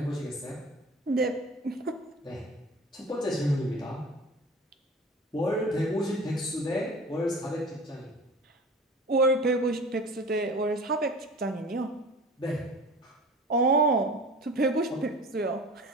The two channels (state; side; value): normal; both; correlation 0.39